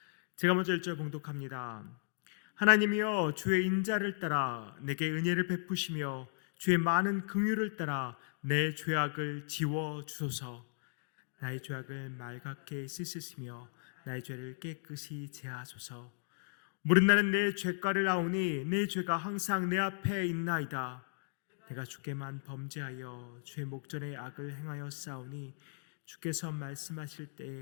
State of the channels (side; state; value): right; silent; digital silence